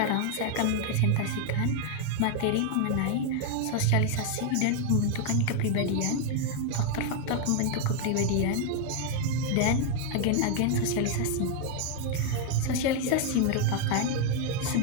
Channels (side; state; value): both; different; correlation 0.00